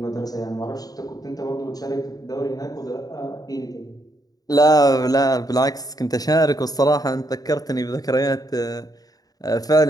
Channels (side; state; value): right; late; 0.18 ms